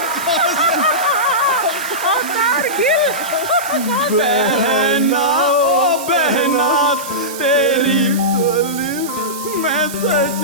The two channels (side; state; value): right; noise; hiss, 11 dB below the sound